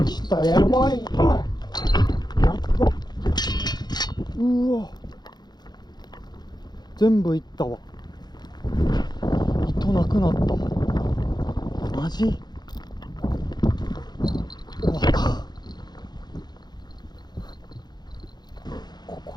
来た。やばい。やっば。うわ、全部いったわ。糸なくなった。マジ終わった。こ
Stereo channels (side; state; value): right; late; 0.20 ms